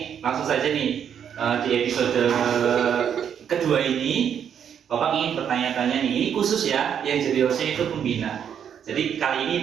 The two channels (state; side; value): quieter; left; 8.4 dB